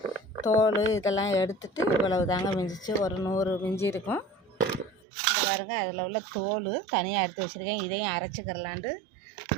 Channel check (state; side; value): drops out; left; at 5.0 s